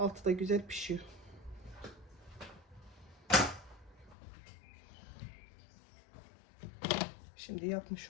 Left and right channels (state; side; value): drops out; right; at 4.2 s